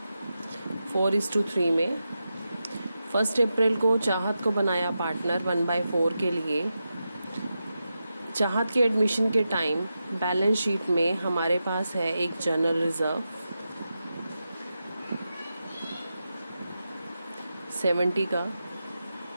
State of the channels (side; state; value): both; inverted; correlation -0.89